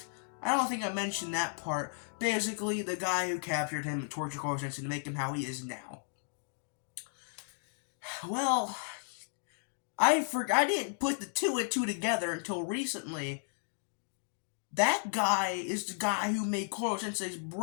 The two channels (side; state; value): right; silent; digital silence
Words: I don't think I mentioned that part. Basically, the guy who captured him and tortured Koro Sensei to make him how he is now. Well, I didn't put the two and two together until recently. That guy is the guy who made Koro Sensei's